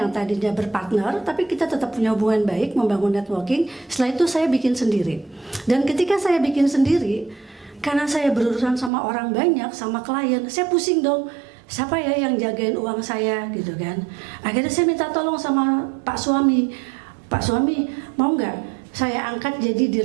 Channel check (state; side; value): drops out; left; at 8.9 s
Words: tadinya berpartner tapi kita tetap punya hubungan baik, membangun networking. Setelah itu saya bikin sendiri. Dan ketika saya bikin sendiri, karena saya berurusan sama orang banyak, sama klien, saya pusing dong. Siapa ya yang jagain uang saya gitu kan? Akhirnya saya minta tolong sama Pak Suami. Pak Suami, mau nggak saya angkat jadi